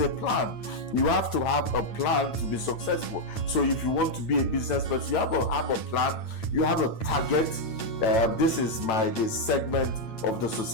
plan. You have to have a plan to be successful. So if you want to be a business person, you have a plan. You have a target. This is the segment of the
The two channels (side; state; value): right; late; 9.0 ms